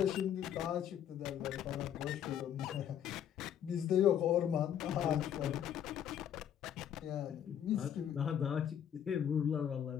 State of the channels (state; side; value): quieter; right; 9.6 dB